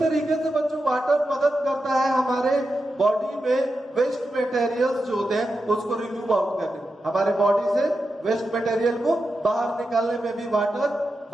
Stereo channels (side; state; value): both; normal; correlation 0.89